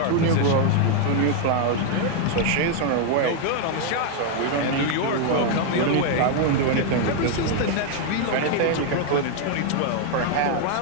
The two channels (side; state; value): both; different; correlation 0.00